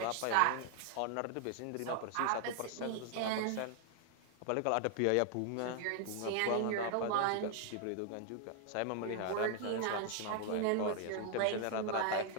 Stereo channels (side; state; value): both; different; correlation 0.00